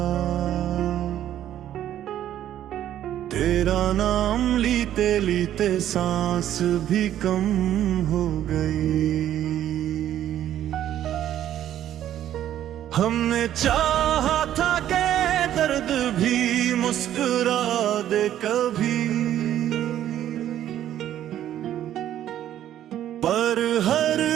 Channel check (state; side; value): quieter; left; 11.6 dB